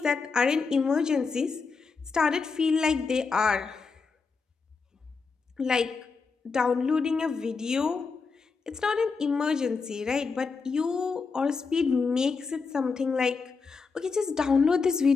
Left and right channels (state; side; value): quieter; right; 4.8 dB